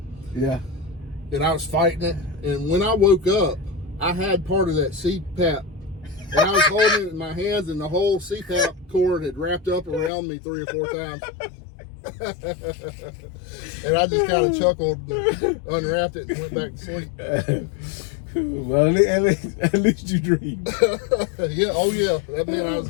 Yeah. And I was fighting it, and when I woke up, I had part of that CPAP, and I was holding it in my hands, and the whole CPAP cord had wrapped up around me 3 or 4 times. And I just kind of chuckled, unwrapped it, and went back to sleep. Well, at least you dreamed. Yeah, oh yeah, that meant I was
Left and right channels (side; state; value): right; drops out; at 10.1 s